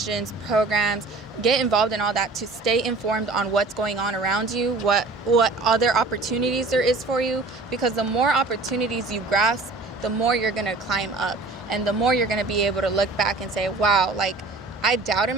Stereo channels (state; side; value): quieter; left; 3.5 dB